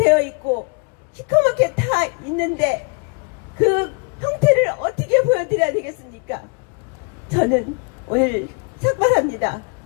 있고 시커멓게 타 있는데 그 형태를 어떻게 보여드려야 되겠습니까? 저는 오늘 삭발합니다.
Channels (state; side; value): quieter; right; 32.9 dB